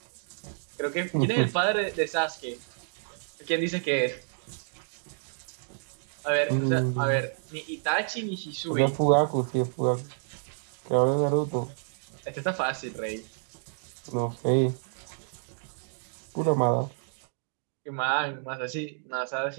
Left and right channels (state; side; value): silent; left; digital silence